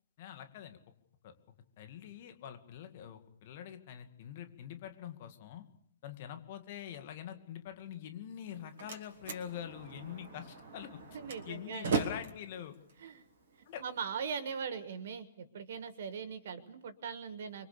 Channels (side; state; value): both; inverted; correlation -0.42